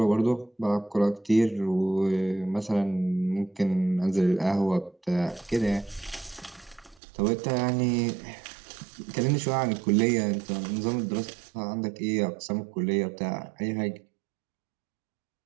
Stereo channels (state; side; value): drops out; left; at 7.0 s